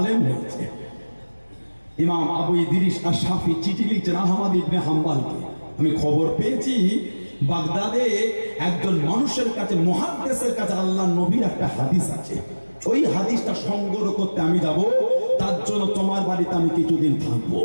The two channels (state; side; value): inverted; both; correlation -1.00